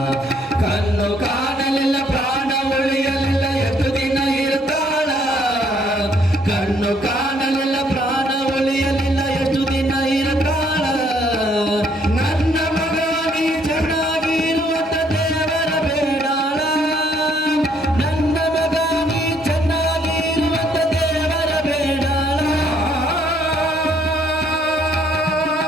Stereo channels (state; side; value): normal; both; correlation 0.67